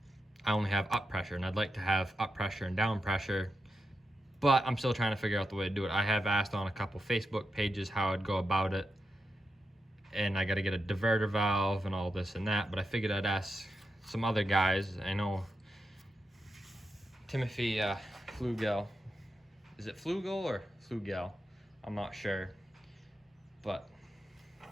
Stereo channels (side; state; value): both; normal; correlation 0.88